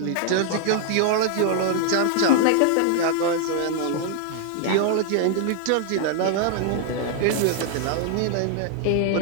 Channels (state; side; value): different; both; correlation 0.00